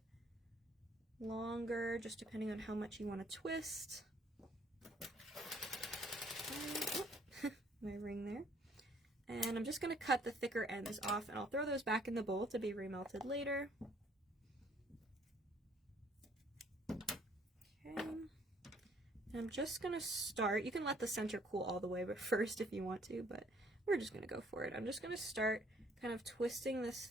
longer, just depending on how much you want to twist. My ring there. And I'm just going to cut the thicker ends off, and I'll throw those back in the bowl to be remelted later. Okay. And I'm just going to start, you can let the center cool all the way but first if you want to, but we're just going to go for it. I'm just going to start kind of twisting this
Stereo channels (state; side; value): normal; both; correlation 0.62